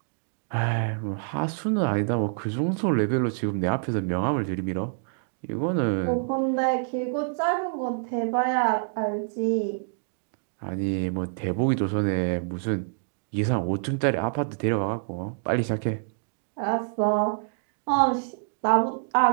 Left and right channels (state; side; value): silent; left; digital silence